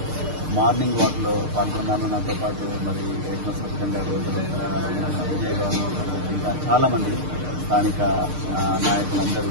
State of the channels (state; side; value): late; left; 6.6 ms